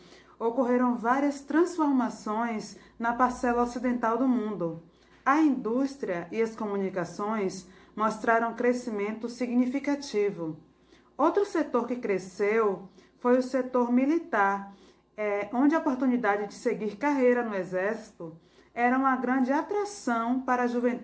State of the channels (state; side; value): identical; both; correlation 1.00